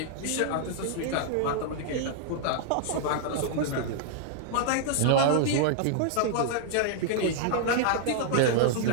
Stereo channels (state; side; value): different; both; correlation -0.01